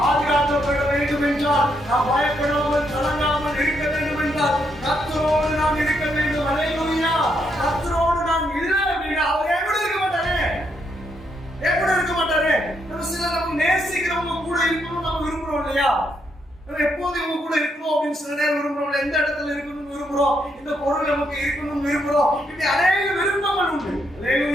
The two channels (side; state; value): both; normal; correlation 0.77